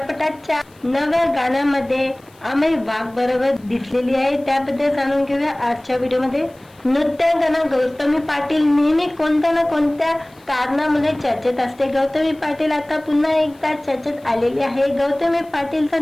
नव्या गाण्यामध्ये अमेय वाघ बरोबर दिसलेली आहे. त्याबद्दल जाणून घेऊया आजच्या व्हिडिओमध्ये. नृत्यांगना गौतमी पाटील नेहमी कोणत्या ना कोणत्या कारणामुळे चर्चेत असते. गौतमी पाटील आता पुन्हा एकदा चर्चेत आलेली आहे. गौतमी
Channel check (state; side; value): noise; left; hiss, 30 dB below the sound